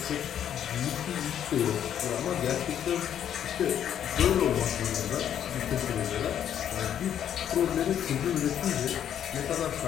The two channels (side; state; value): right; quieter; 9.7 dB